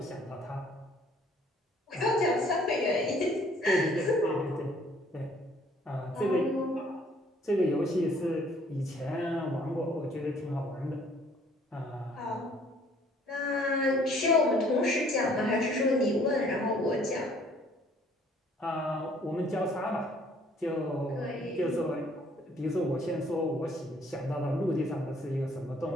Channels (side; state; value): both; normal; correlation 0.60